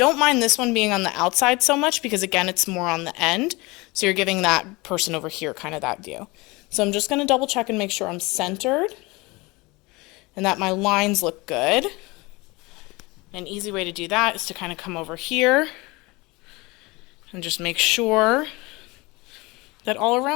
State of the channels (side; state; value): right; quieter; 24.1 dB